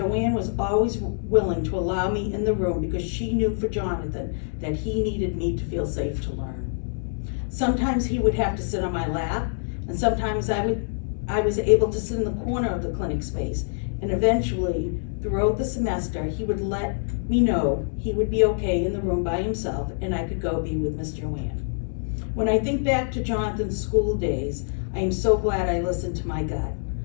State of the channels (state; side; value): silent; right; digital silence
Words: was always willing to allow me in the room because she knew for Jonathan that he needed me to feel safe to learn. Sometimes he would have to sit on my lap, and sometimes I was able to sit in the corner of the clinic space, and eventually, throughout the semester, he would let me know he would be okay in the room by himself, and I could go be with Miss Joanne. When I think back to Jonathan's school days, I am so glad I listened to my gut.